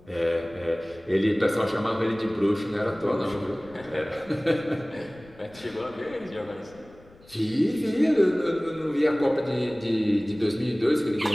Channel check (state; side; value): noise; left; rumble, 25 dB below the sound